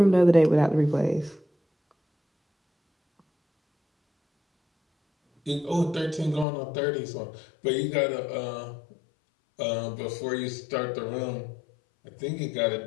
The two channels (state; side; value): drops out; right; at 6.5 s